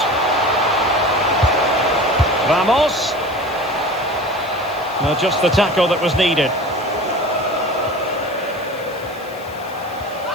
Ramos. Now just the tackle that was needed.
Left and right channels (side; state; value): left; noise; hiss, 24 dB below the sound